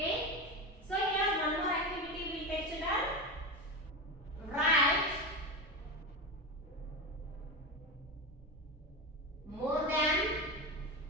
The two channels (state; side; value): normal; both; correlation 0.20